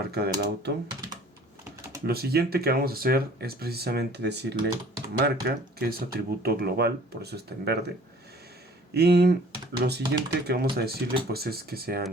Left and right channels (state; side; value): normal; both; correlation 0.52